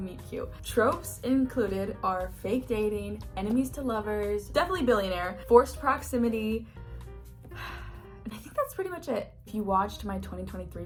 Cute. Tropes included are fake dating, enemies to lovers, definitely billionaire, forced proximity, and I think that's pretty much it. If you watched my 2023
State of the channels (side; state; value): both; identical; correlation 1.00